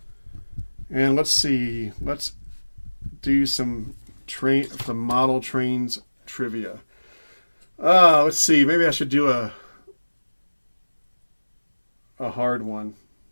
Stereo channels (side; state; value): both; inverted; correlation -1.00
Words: And let's see. Let's do some model trains trivia. Let's see. Maybe I should do a hard one